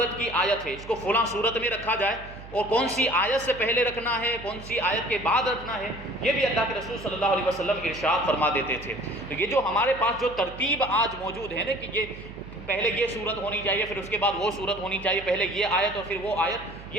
کی آیت ہے، اس کو فلاں صورت میں رکھا جائے، اور کون سی آیت سے پہلے رکھنا ہے، کون سی آیت کے بعد رکھنا ہے، یہ بھی اللہ کے رسول صلی اللہ علیہ وسلم ارشاد فرما دیتے تھے۔ تو یہ جو ہمارے پاس جو ترتیب آج موجود ہے نا کہ یہ پہلے یہ صورت ہونی چاہیے، پھر اس کے بعد وہ صورت ہونی چاہیے، پہلے یہ آیت اور پھر وہ آیت،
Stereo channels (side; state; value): right; noise; hum, 16 dB below the sound